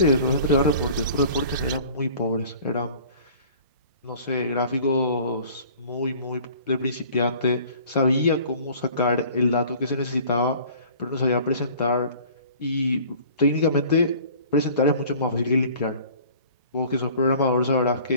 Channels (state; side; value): inverted; both; correlation -0.48